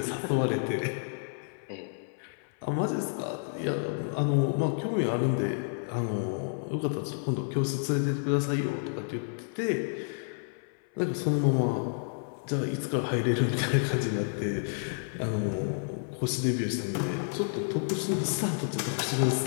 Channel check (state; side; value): silent; right; 58 dB below the other